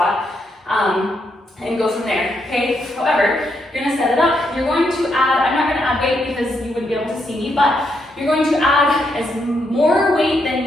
and go from there, okay? However, you're gonna set it up. You're going to add, I'm not gonna add weight because you wouldn't be able to see me, but you're going to add as more weight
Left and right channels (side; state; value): both; normal; correlation 0.79